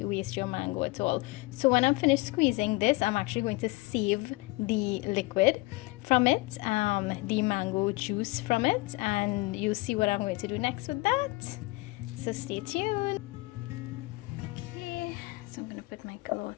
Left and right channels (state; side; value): quieter; right; 23.0 dB